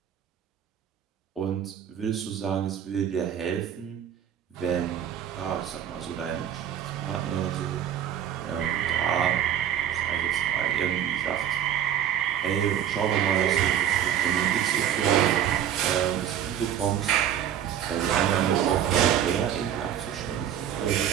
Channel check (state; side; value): quieter; left; 10.0 dB